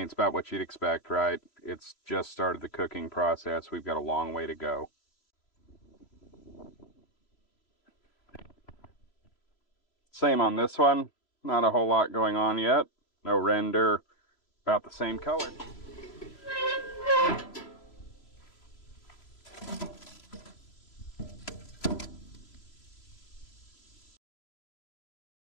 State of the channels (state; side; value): late; right; 3.0 ms